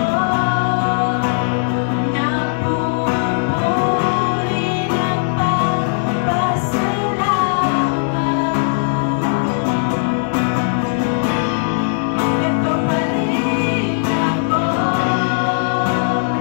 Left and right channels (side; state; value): right; silent; digital silence